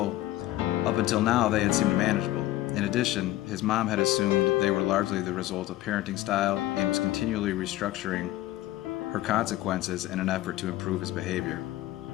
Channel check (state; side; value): quieter; right; 15.7 dB